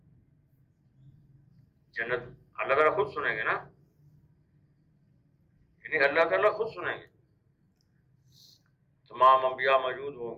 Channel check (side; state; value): both; identical; correlation 1.00